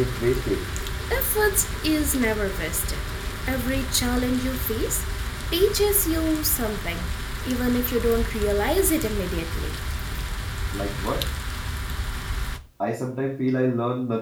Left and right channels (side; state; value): both; identical; correlation 1.00